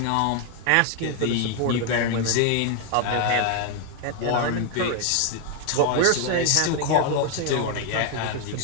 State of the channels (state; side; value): different; both; correlation 0.01